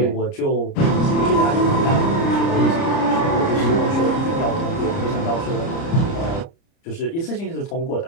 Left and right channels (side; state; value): right; late; 30 ms